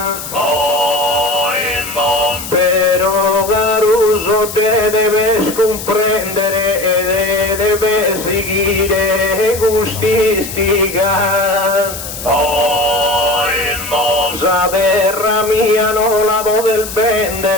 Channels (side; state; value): left; noise; hiss, 9 dB below the sound